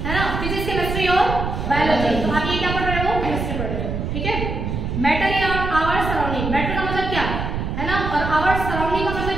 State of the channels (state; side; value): noise; right; rumble, 3 dB below the sound